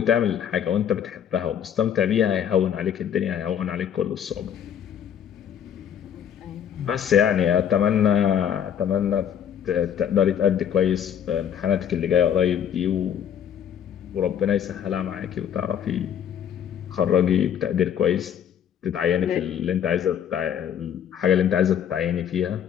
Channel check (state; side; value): quieter; right; 9.0 dB